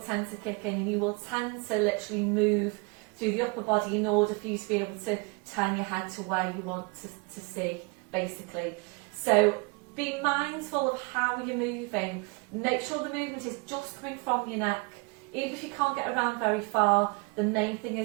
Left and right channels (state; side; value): quieter; left; 30.2 dB